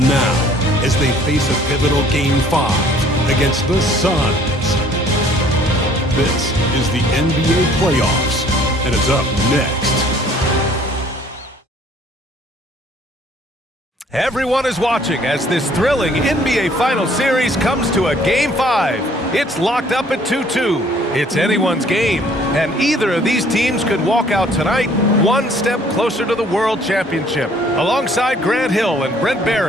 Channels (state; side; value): normal; both; correlation 0.58